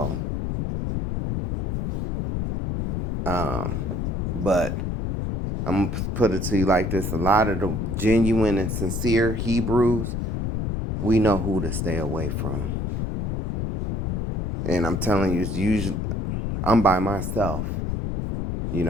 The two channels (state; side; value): noise; left; rumble, 2 dB below the sound